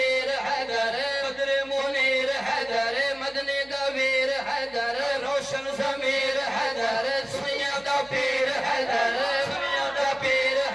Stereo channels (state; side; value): noise; right; hum, 26 dB below the sound